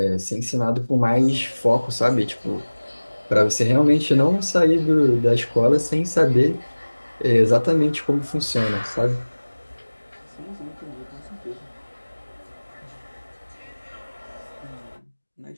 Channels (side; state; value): both; inverted; correlation -1.00